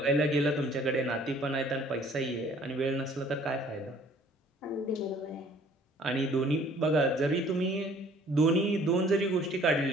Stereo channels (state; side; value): normal; both; correlation 0.55